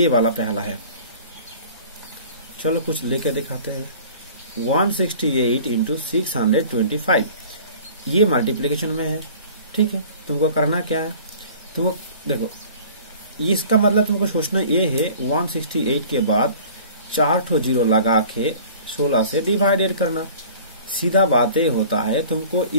वाला पहला है, चलो कुछ लेके दिखाते हैं। 168 इंटू 625 ये मल्टीप्लीकेशन में है, ठीक है। तुमको करना क्या है, तुमको देखो इसका मतलब तुमको सोचना ये है 168 के बाद 4 ठो जीरो लगा के 16 से डिवाइडेड करना। सीधा बात ये होता है, तुमको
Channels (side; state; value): both; inverted; correlation -0.46